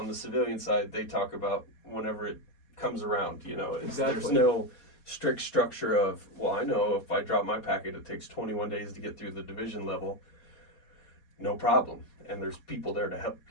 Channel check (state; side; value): late; right; 4.2 ms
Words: the civilian side, they talk about whenever it comes around. Exactly. There's no strict structure of, well, I know if I drop my packet, it takes 21 days to get through the division level. No problem. And there's people there to help